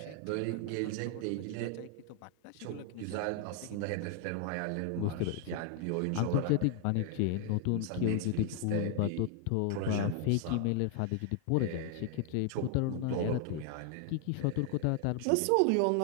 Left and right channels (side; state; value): both; different; correlation 0.00